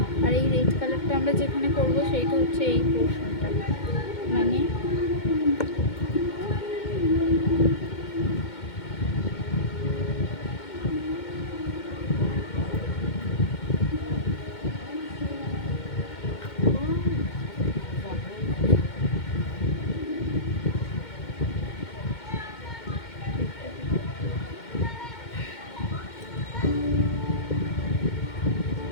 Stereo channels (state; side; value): late; right; 2.2 ms